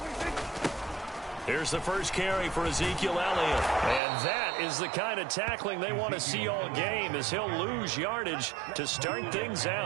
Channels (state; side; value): drops out; left; at 4.0 s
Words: Here's the first carry for Ezekiel Elliott. And that is the kind of tackling they want to see all game, as he'll lose yardage to start things